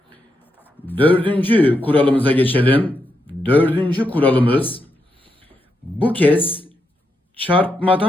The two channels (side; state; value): both; normal; correlation 0.83